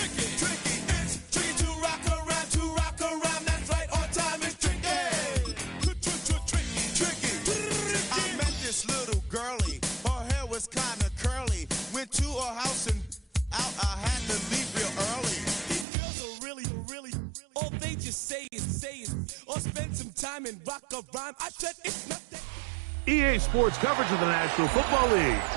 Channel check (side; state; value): left; drops out; at 15.9 s